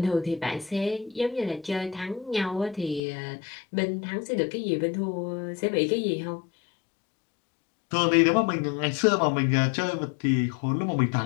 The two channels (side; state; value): right; drops out; at 3.0 s